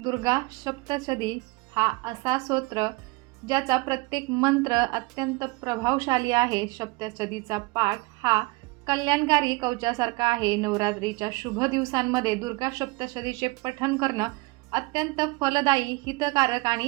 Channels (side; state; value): left; quieter; 24.0 dB